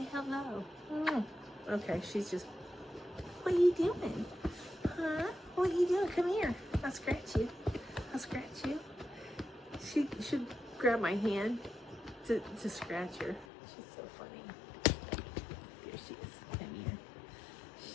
hello. Okay, she's just... What are you doing? Huh? What are you doing? Come here. I'll scratch you. I'll scratch you. She should grab my hand to scratch her. She's so funny. There she is. Come here.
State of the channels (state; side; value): drops out; right; at 13.5 s